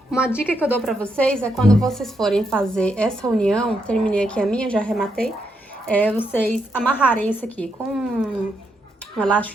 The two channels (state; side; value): normal; both; correlation 0.80